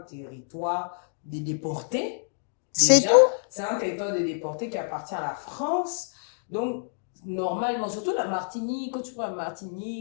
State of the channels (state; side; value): silent; right; digital silence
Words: de déportés, déjà. C'est un territoire de déportés qui appartient à la France. Donc, normalement, surtout la Martinique, quand tu parles